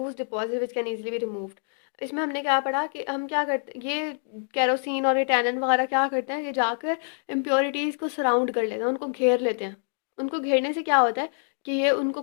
deposit which can easily be removed। इसमें हमने क्या पढ़ा कि हम क्या करते, ये केरोसिन और ये टैनन वगैरह क्या करते हैं कि जाकर इम्प्योरिटीज़ को सराउंड कर लेते हैं, उनको घेर लेते हैं। उनको घेरने से क्या होता है कि ये उनको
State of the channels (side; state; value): right; silent; digital silence